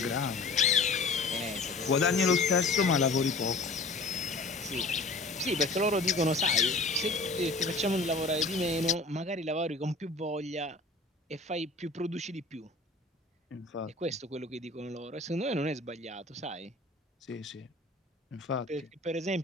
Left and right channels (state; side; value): quieter; right; 3.3 dB